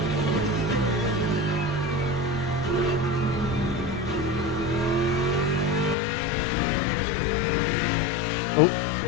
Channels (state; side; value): drops out; right; at 6.0 s